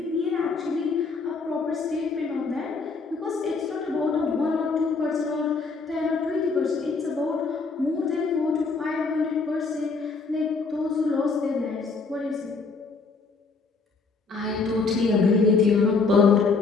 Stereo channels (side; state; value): right; quieter; 4.4 dB